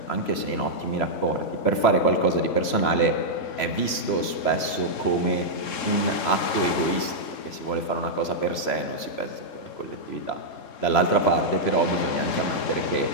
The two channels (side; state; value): right; late; 3.0 ms